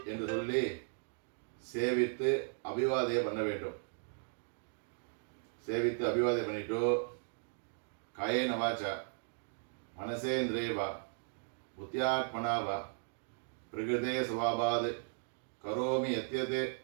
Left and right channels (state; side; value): silent; left; digital silence